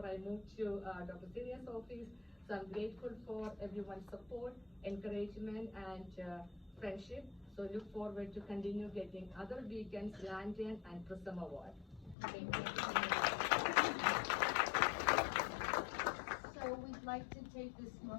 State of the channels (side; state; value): right; drops out; at 12.2 s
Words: I moved to Dr. Siria's office. So I'm grateful for everyone's support, encouragement, and friendship. So look forward to continue getting other beacons, lantern, and Prism Award. Thank you. So we'd like to take this